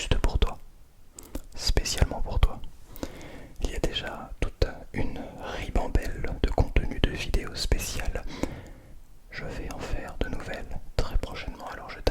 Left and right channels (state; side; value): identical; both; correlation 1.00